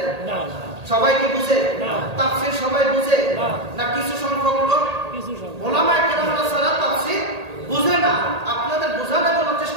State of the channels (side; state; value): left; late; 1.8 ms